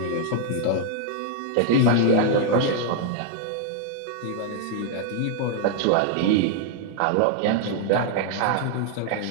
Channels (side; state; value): both; different; correlation 0.00